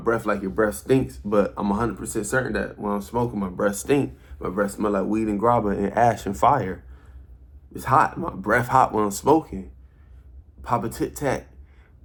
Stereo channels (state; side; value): identical; both; correlation 1.00